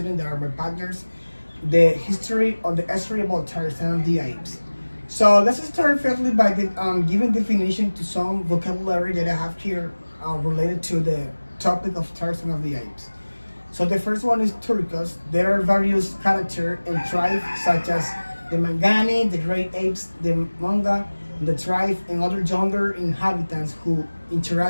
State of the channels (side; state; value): both; inverted; correlation -1.00